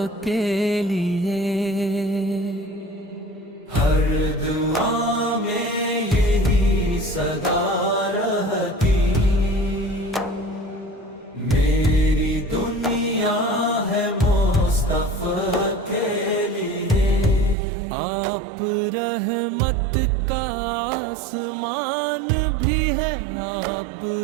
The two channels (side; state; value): left; drops out; at 17.6 s